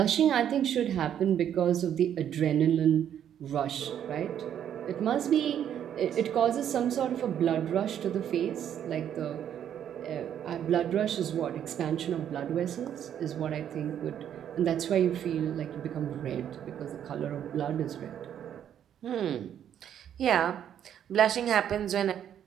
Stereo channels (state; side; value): quieter; left; 9.7 dB